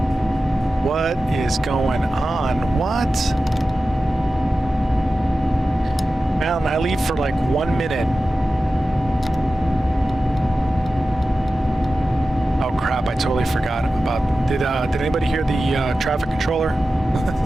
What is going on? What? Man, I leave for like 1 minute. Oh crap! I totally forgot about. Did anybody hear the traffic controller?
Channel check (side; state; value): both; normal; correlation 0.94